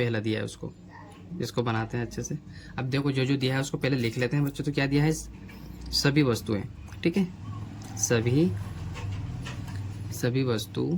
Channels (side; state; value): both; identical; correlation 1.00